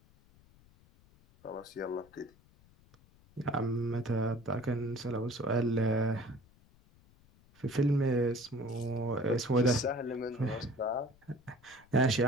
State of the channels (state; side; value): noise; left; rumble, 28 dB below the sound